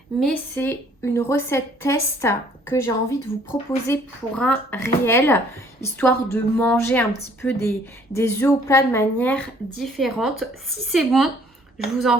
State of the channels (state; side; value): normal; both; correlation 0.59